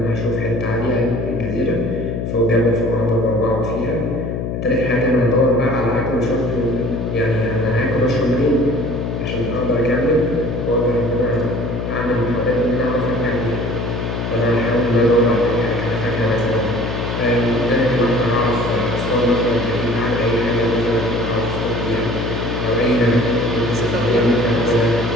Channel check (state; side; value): noise; left; hum, 3 dB below the sound